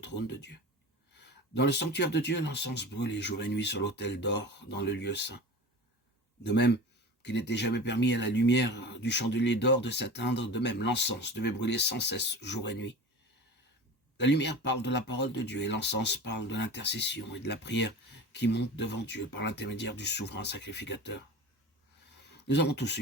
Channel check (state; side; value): normal; both; correlation 0.33